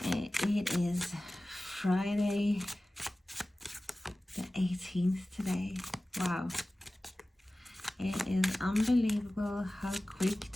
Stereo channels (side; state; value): both; normal; correlation 0.97